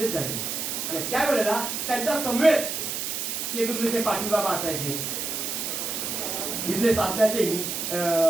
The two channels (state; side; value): noise; right; hiss, 3 dB below the sound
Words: झालं. आणि त्यावेळेला त्यांच्या समवेत केंद्रुलीचे पाटील बाबा असायचे, इथले सासण्याचे